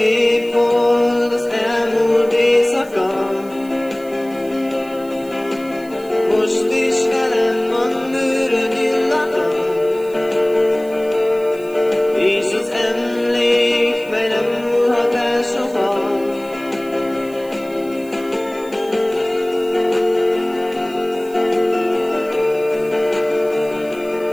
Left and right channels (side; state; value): right; noise; hiss, 24 dB below the sound